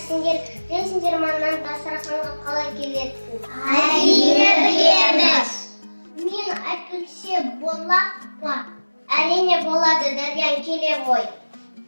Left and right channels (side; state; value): both; inverted; correlation -1.00